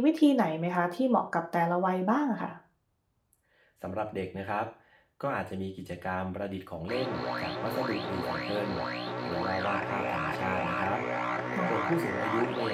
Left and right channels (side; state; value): both; identical; correlation 1.00